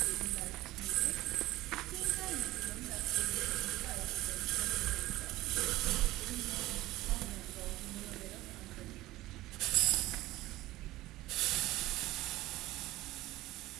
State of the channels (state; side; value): quieter; left; 17.4 dB